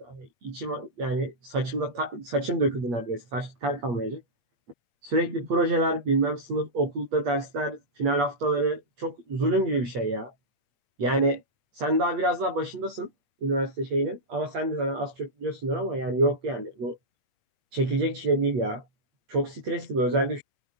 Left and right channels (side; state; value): left; late; 8.5 ms